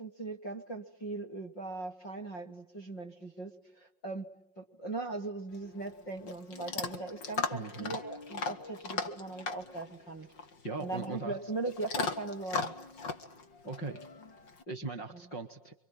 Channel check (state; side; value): late; right; 5.6 ms